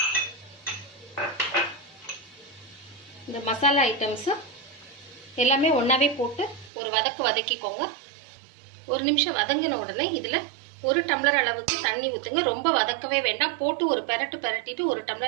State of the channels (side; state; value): left; drops out; at 6.7 s